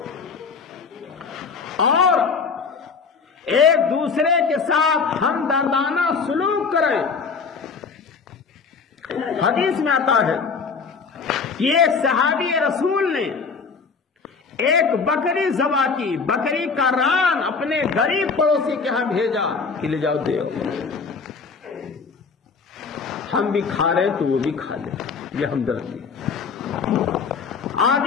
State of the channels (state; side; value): quieter; right; 5.2 dB